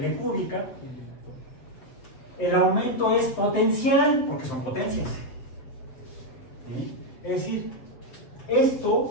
cúbica. El aumento es potencial, porque son potencias. ¿Sí? Es decir,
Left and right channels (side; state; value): right; late; 7.8 ms